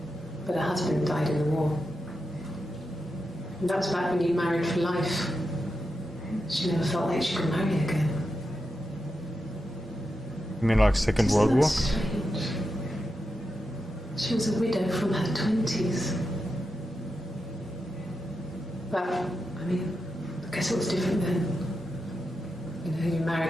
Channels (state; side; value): normal; both; correlation 0.88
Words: but her husband died in the war. And that was back when you married for life. She never felt like she could marry again. You mean like Second World Isn't War? that strange? She was a widow from her 20s. But, I mean, I guess it was different then. You know, you